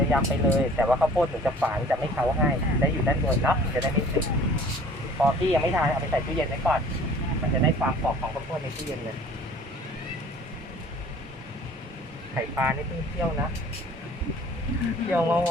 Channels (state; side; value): normal; both; correlation 0.50